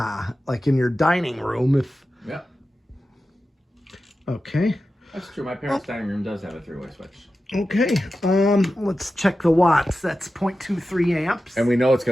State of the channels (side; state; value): both; normal; correlation 0.93